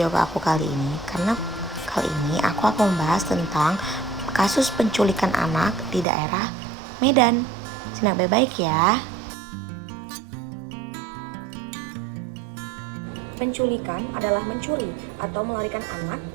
aku kali ini, karena kali ini aku akan membahas tentang kasus penculikan anak di daerah Medan. Simak baik-baik ya. Penculikan adalah mencuri atau melarikan anak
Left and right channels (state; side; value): drops out; left; at 6.1 s